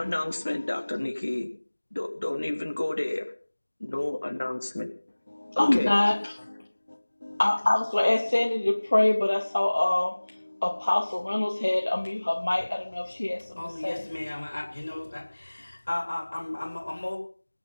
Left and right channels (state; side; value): inverted; both; correlation -1.00